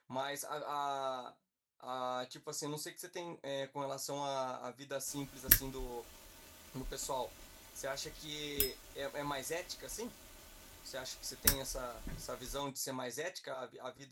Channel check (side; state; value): both; identical; correlation 1.00